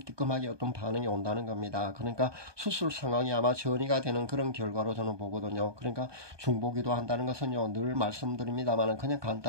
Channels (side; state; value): left; late; 1.2 ms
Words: 어떤 반응이 온다는 겁니다. 그러니까 수술 상황이 아마 전이가 되는 그런 결과로 저는 보거든요. 그러니까 중보기도 한다는 것은요, 늘 말씀드립니다만 그냥